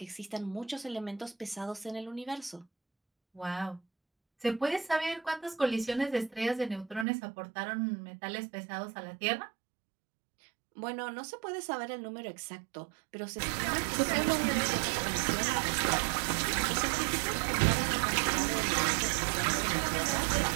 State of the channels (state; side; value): drops out; left; at 7.1 s